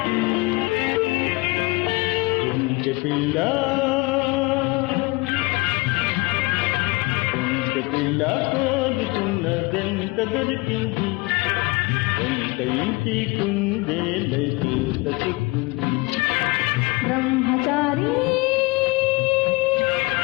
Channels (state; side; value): quieter; right; 24.2 dB